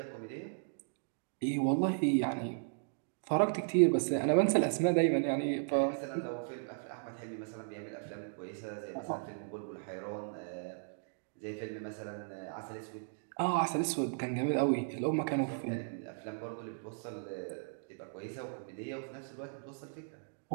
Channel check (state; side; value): silent; left; digital silence